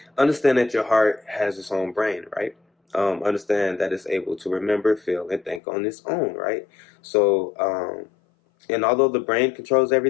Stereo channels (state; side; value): drops out; right; at 5.6 s